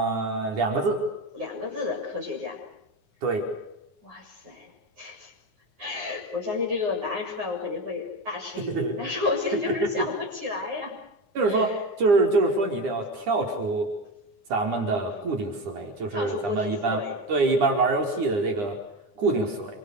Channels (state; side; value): late; left; 9.9 ms